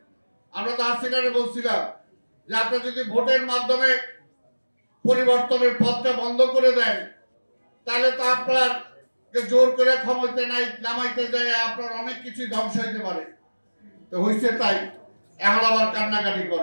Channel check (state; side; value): inverted; both; correlation -1.00